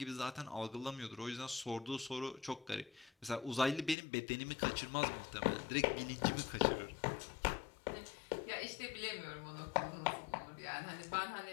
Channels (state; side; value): drops out; right; at 4.0 s